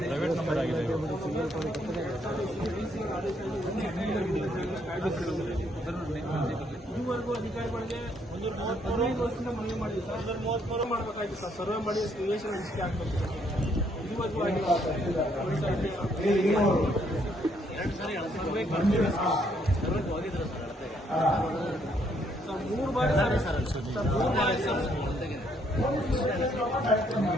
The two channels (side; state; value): both; normal; correlation 0.70